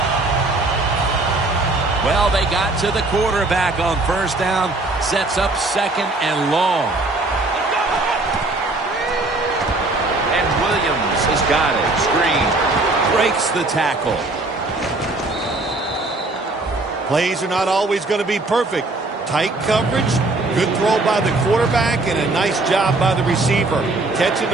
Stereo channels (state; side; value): quieter; left; 3.0 dB